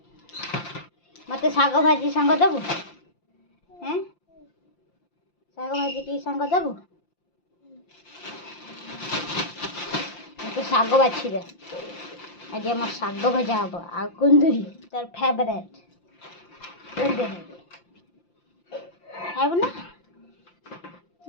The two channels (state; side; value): late; right; 5.8 ms